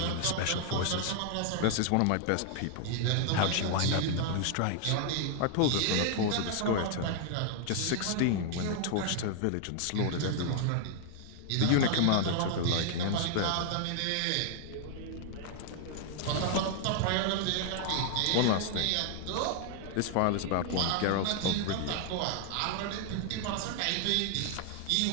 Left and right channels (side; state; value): both; different; correlation 0.00